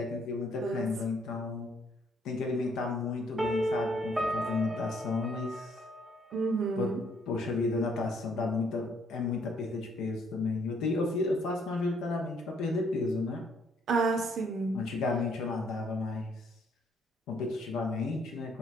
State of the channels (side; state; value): both; normal; correlation 0.67